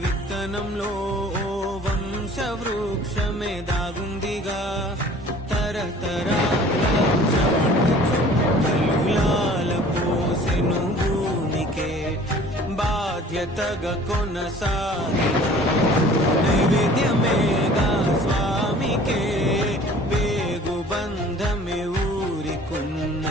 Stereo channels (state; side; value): normal; both; correlation 0.49